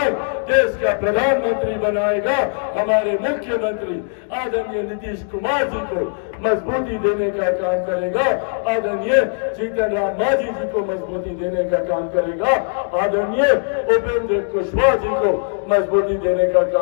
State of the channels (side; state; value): right; silent; digital silence